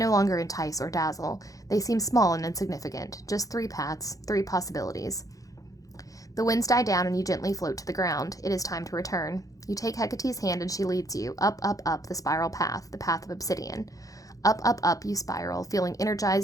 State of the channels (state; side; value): late; right; 0.17 ms